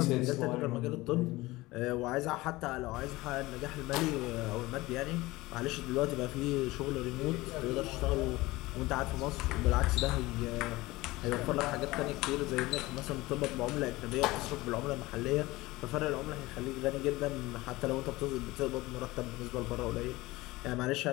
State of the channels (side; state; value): right; quieter; 20.0 dB